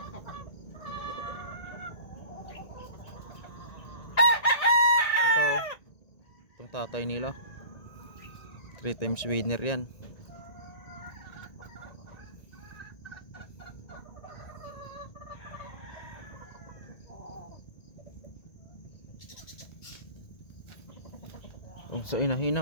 Itong tatay nila 3 times winner yan. Kung sa inahin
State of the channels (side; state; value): right; late; 1.9 ms